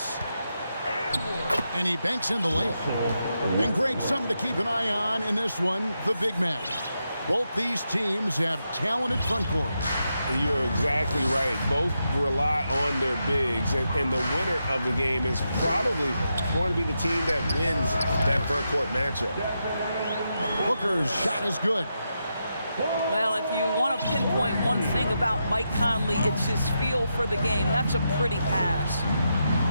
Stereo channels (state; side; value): inverted; both; correlation -0.85